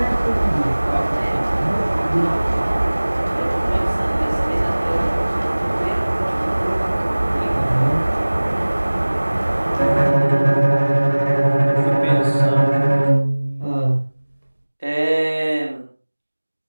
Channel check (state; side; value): inverted; both; correlation -1.00